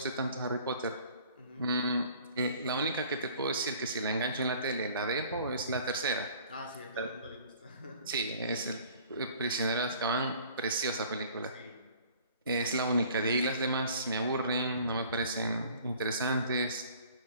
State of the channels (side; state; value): both; inverted; correlation -0.52